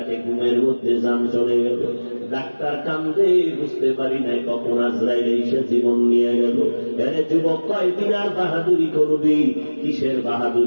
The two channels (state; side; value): inverted; both; correlation -1.00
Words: ঘুমের মধ্যে জান চলে গেল। ডাক্তার কান্দে, বুঝতে পারি নাই কখন আজরাইল এসে জীবন নিয়ে গেল। আরে যুবক, কয়দিন আর বাহাদুরি করবি? কিসের